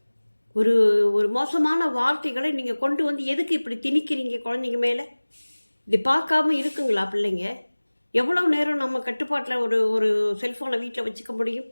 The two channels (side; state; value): both; inverted; correlation -1.00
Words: ஒரு ஒரு மோசமான வார்த்தைகளை நீங்கள் கொண்டு எதுக்கு இப்படி திணிக்கிறீங்க குழந்தைங்க மேலே? இது பார்க்காம இருக்குங்களா பிள்ளைங்க? எவ்வளோ நேரம் நம்ம கட்டுப்பாட்டில் ஒரு செல்ஃபோனை வீட்டில் வச்சுக்க முடியும்?